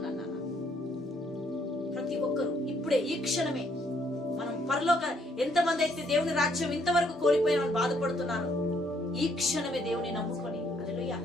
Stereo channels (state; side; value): normal; both; correlation 0.69